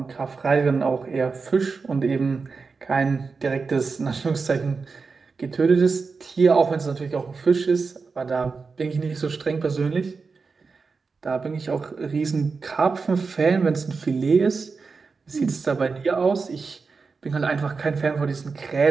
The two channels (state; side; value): quieter; left; 4.7 dB